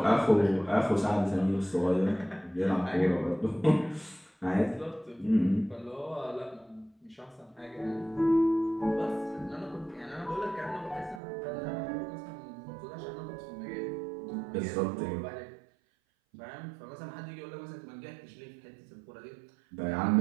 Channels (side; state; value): left; drops out; at 11.2 s